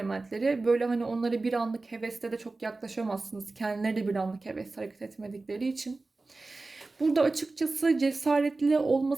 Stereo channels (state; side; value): quieter; left; 3.4 dB